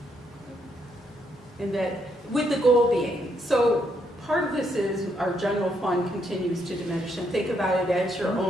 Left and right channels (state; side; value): normal; both; correlation 0.75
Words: and that, with the goal being, so part of this is our general fund continues to diminish, and think about it as your